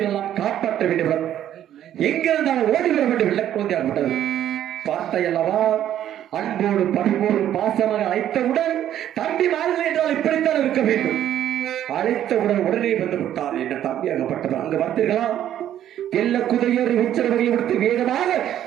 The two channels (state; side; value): quieter; left; 11.2 dB